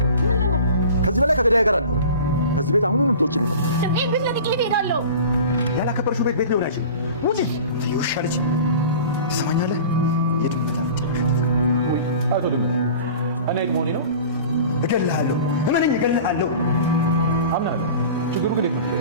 ከዚህ በላይ ከገዳይ ጋር አንኖርም። ከዚህ ቤት አሁኑን ትወጪልኝ። እኔ ቤት ለጥቂት እሄዳለሁ። ያላከበርሽው ቤት ሊሆን አይችልም። ውጪ ትይውሻ ልጅ ትሰማኛለህ? የድመት አፍንጫ ወይ አቶ ድመት፣ እኔ መሆኔ ነው። እገልሃለሁ፣ እመነኝ፣ እገልሃለሁ። አምናለሁ። ችግሩ ግን የት ነው?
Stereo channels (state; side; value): inverted; both; correlation -0.39